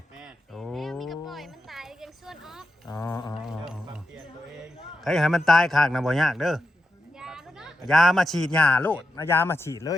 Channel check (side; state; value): both; normal; correlation 0.88